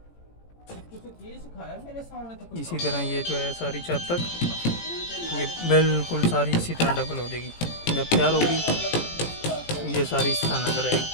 इसी तरह ये जो है सारी छत तक ये बिल्कुल सारी इसी तरह डबल हो जाएगी। जब तैयार होगी ये सारी इस तरह नजर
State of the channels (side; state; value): right; late; 18 ms